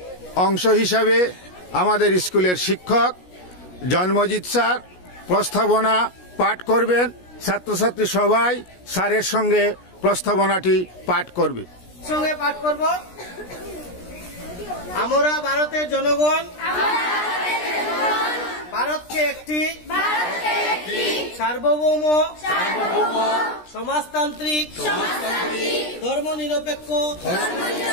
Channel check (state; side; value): late; right; 17 ms